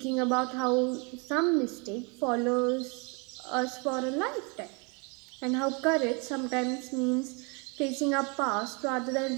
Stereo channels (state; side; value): quieter; left; 32.0 dB